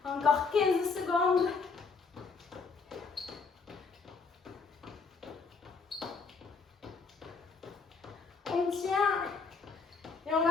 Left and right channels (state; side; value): quieter; right; 4.8 dB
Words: Encore 15 secondes. On tient. Et on